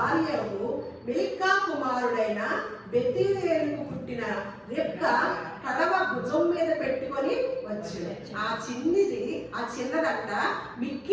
మిల్కా కుమారుడైన బెతూయేలుకు పుట్టిన రెబ్కా కడవ భుజం మీద పెట్టుకొని వచ్చింది. ఆ చిన్నదంట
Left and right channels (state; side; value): identical; both; correlation 1.00